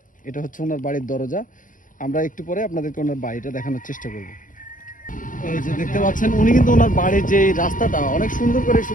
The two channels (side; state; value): right; late; 0.38 ms